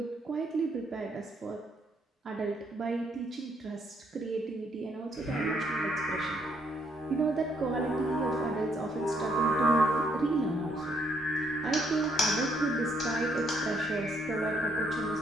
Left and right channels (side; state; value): both; normal; correlation 0.71